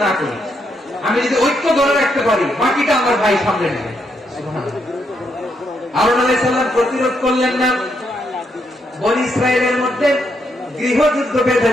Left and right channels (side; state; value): both; normal; correlation 0.78